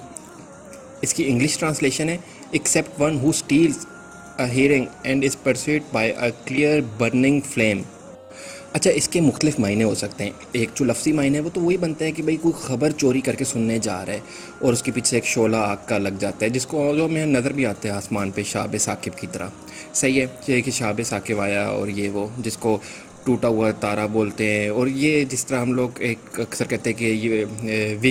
اس کی انگلش ٹرانسلیشن ہے accept one who steels a hearing and is persuade by a clear burning flame. اچھا، اس کے مختلف معنی ہو سکتے ہیں. ایک جو لفظی معنی ہے وہ تو وہی بنتا ہے کہ بھئی کوئی خبر چوری کر کے سننے جا رہا ہے اور اس کے پیچھے ایک شعلہ آگ کا لگ جاتا ہے، جس کو جو ہمیں نظر بھی آتا ہے آسمان پہ شہاب ثاقب کی طرح. صحیح ہے، یہ کہ شہاب ثاقب آیا اور یہ وہ جس کو ٹوٹا ہوا تارا بولتے ہیں. اور یہ جس طرح ہم لوگ ایک اکثر کہتے ہیں کہ یہ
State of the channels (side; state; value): both; identical; correlation 1.00